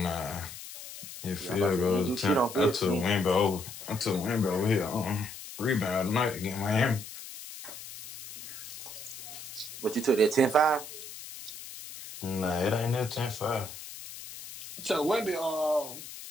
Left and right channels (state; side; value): noise; left; hiss, 12 dB below the sound